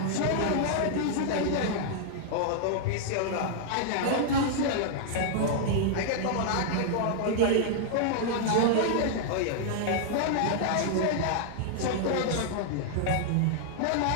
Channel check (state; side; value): different; both; correlation -0.01